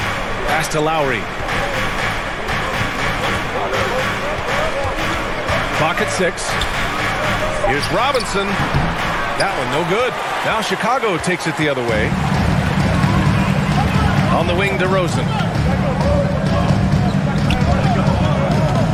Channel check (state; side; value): identical; both; correlation 1.00